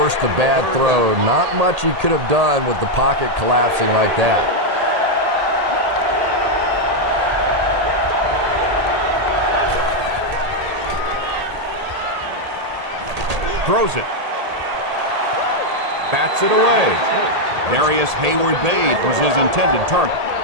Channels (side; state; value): left; late; 1.8 ms